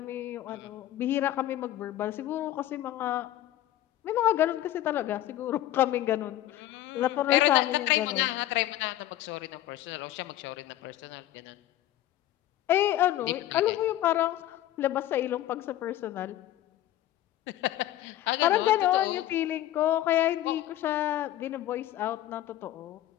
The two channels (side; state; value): right; quieter; 13.8 dB